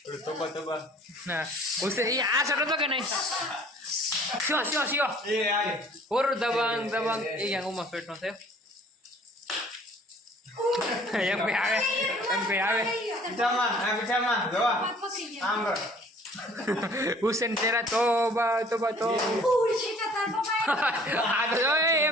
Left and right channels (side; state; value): both; normal; correlation 0.53